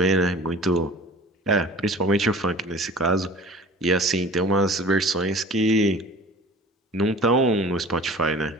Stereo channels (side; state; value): both; normal; correlation 0.43